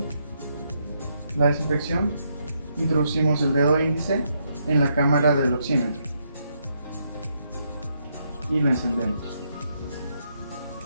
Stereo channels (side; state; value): both; inverted; correlation -0.77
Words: la desinfección, Introducimos el dedo índice en la cámara del oxímetro y lo encendemos.